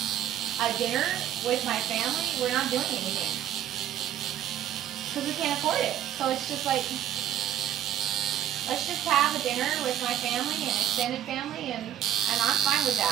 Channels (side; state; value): left; quieter; 11.1 dB